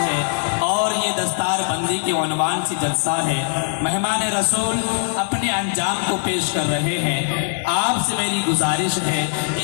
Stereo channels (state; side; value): silent; right; digital silence